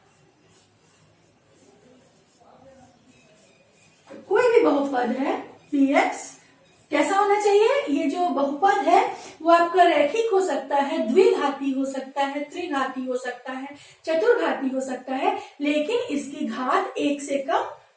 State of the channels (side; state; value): both; identical; correlation 1.00